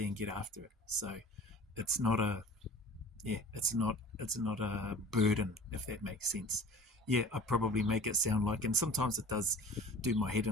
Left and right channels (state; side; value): normal; both; correlation 0.43